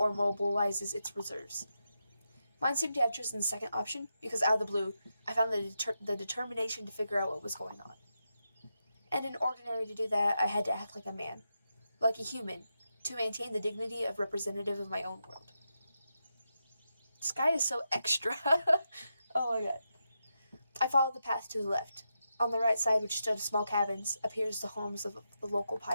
mobilizes its reserves. Mine seemed to have chosen the second option, because out of the blue, I found the determination to figure out what was going on. And in ordinary to do that, I had to act like a man. like a human, to maintain the dignity of representative of my own world. This guy is so extra. Oh my god. I followed the path to the left. On the right side, which stood small cabins, appears the homes of the local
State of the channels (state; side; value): inverted; both; correlation -0.87